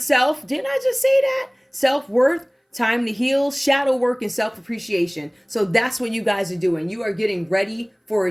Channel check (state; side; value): identical; both; correlation 1.00